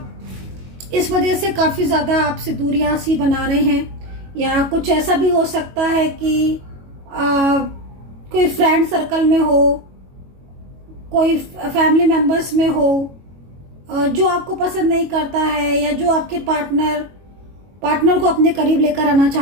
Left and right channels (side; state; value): left; late; 22 ms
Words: इस वजह से काफ़ी ज़्यादा आपसे दूरियां सी बना रहे हैं, या कुछ ऐसा भी हो सकता है कि कोई फ्रेंड सर्कल में हो, कोई फैमिली मेंबर्स में हो जो आपको पसंद नहीं करता है, या जो आपके पार्टनर को अपने करीब लेकर आना